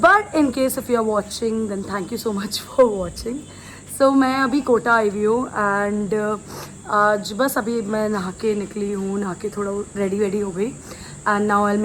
in case if you are watching then thank you so much for watching. So मैं अभी कोटा आई हुई हूँ एंड आज बस अभी मैं नहा के निकली हूँ, नहा के थोड़ा रेडी हो गई and now I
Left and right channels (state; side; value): identical; both; correlation 1.00